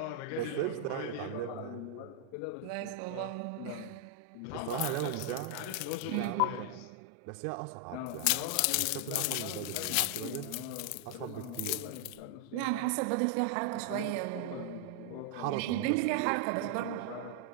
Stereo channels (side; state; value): both; different; correlation 0.00